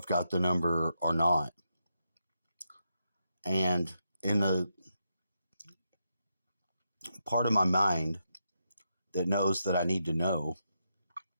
got the number or not. And in the part of my mind that knows that I need to know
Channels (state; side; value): inverted; both; correlation -0.83